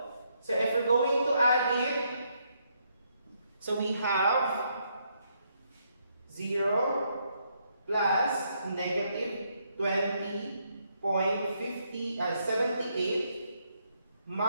So if we're going to add it, so we have 0 plus negative 20.78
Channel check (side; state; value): both; inverted; correlation -0.75